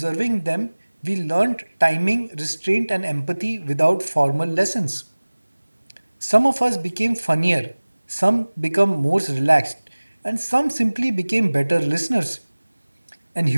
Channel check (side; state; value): both; inverted; correlation -1.00